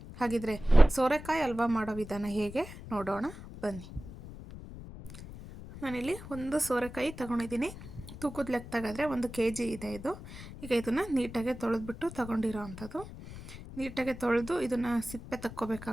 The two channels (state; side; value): noise; left; rumble, 13 dB below the sound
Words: ಹಾಗಿದ್ರೆ ಸೋರೆಕಾಯಿ ಹಲ್ವಾ ಮಾಡೋ ವಿಧಾನ ಹೇಗೆ ನೋಡೋಣ ಬನ್ನಿ. ನಾನಿಲ್ಲಿ ಒಂದು ಸೋರೆಕಾಯಿ ತೊಗೊಂಡಿದ್ದೀನಿ. ತೂಕದ ಲೆಕ್ಕ ತೆಗೆದ್ರೆ 1 kg ಇದೆ ಇದು. ಈಗ ಇದನ್ನು ನೀಟಾಗಿ ತೊಳೆದ್ಬಿಟ್ಟು ತೊಗೊಂಡಿರೋ ಅಂಥದ್ದು. ನೀಟಾಗಿ ತೊಳೆದು ಇದನ್ನು ಸಿಪ್ಪೆ